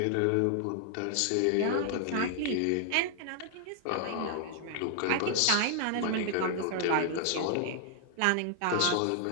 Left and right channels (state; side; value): different; both; correlation 0.00